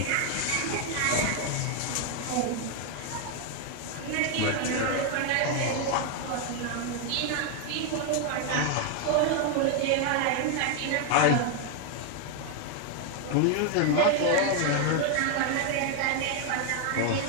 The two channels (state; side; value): different; both; correlation 0.01